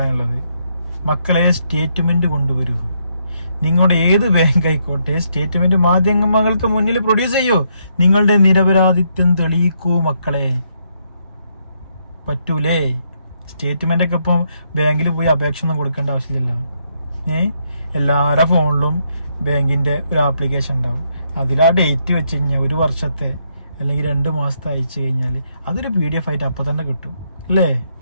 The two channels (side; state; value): both; inverted; correlation -0.75